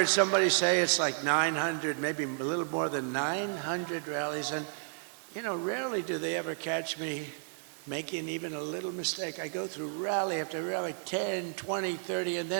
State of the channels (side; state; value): left; silent; digital silence